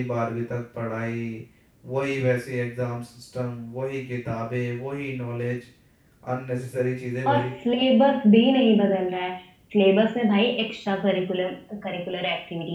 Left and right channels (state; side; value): identical; both; correlation 1.00